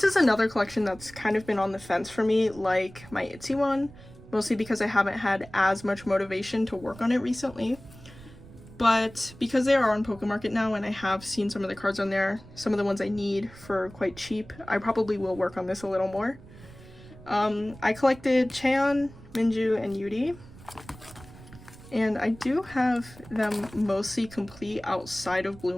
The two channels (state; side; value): noise; right; rumble, 19 dB below the sound